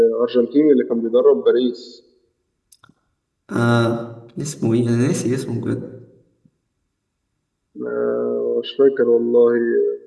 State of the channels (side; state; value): both; identical; correlation 1.00